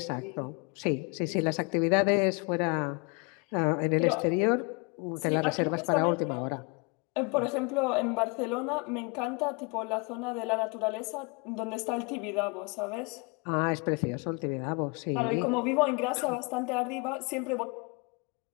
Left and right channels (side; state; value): right; quieter; 30.6 dB